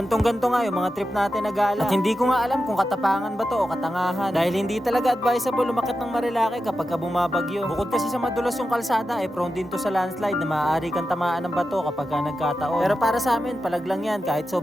nga yung mga trip natin na gala. At hindi ko nga alam kung katapangan ba to o katangahan. Dahil hindi talaga advisable umakyat ng Marilake kapag bumabagyo. Bukod kasi sa madulas yung kalsada, prone din to sa landslide na maaari kang tamaan ng bato kapag nagkataon. Pero para sa amin, palaglang yan kahit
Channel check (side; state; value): both; normal; correlation 0.91